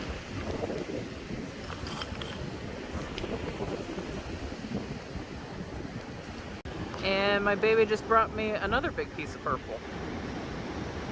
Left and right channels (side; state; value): both; identical; correlation 1.00